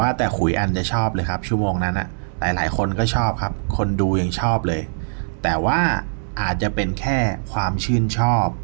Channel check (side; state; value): left; silent; digital silence